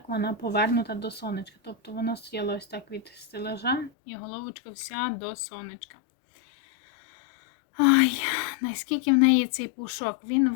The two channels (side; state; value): right; drops out; at 3.9 s